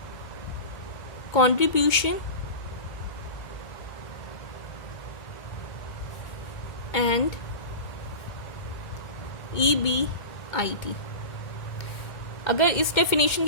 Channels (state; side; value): late; right; 2.2 ms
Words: contribution and EBIT। अगर इस डेफिनेशन